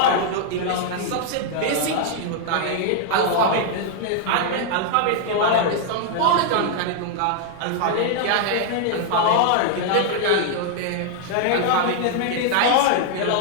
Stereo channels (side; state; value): both; different; correlation 0.00